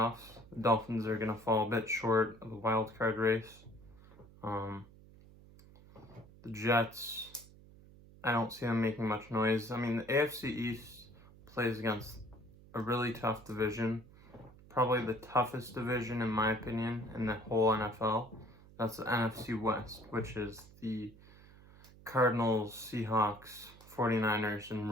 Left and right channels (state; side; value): noise; right; hum, 22 dB below the sound